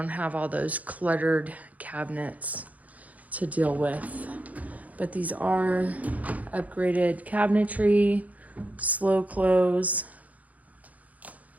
have all those cluttered cabinets to deal with. But these are upgraded cabinetry, slow close,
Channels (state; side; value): late; left; 0.074 ms